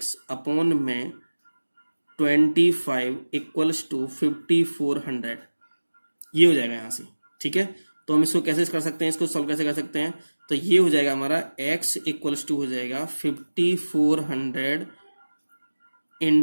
अपॉन में 25 इक्वल्स टू 5400, ये हो जाएगा यहाँ से। ठीक है, तो हम इसको कैसे कर सकते हैं, इसको सॉल्व कैसे कर सकते हैं, तो ये हो जाएगा हमारा x इक्वल्स टू हो जाएगा 5400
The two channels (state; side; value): inverted; both; correlation -1.00